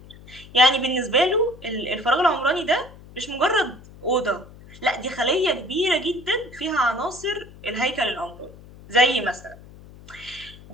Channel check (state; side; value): noise; left; hum, 20 dB below the sound